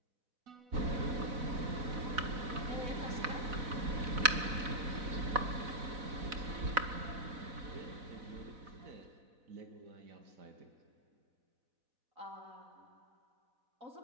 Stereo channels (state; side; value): late; left; 4.0 ms